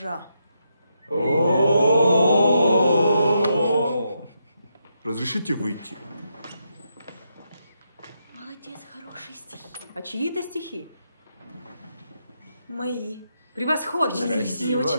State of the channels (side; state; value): both; inverted; correlation -0.82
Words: Разрешите выйти? Молодец, хорошие стихи. А чьи это стихи? Мои. Превосходно. Мне